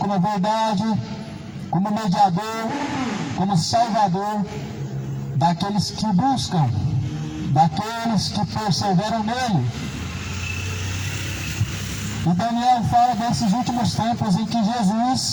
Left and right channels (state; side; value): identical; both; correlation 1.00